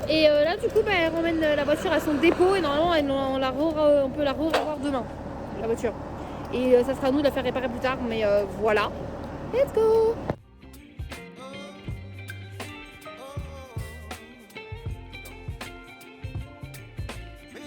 Et là du coup elle ramène la voiture à son dépôt et normalement on peut la revoir demain, la voiture. Et ça sera à nous de la faire réparer plus tard, mais voilà. Let's go!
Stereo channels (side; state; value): both; identical; correlation 1.00